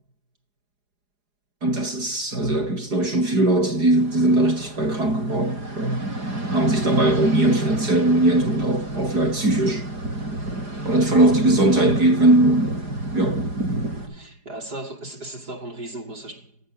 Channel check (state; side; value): late; left; 4.9 ms